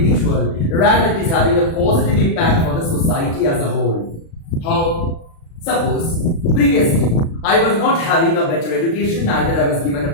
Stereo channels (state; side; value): late; right; 36 ms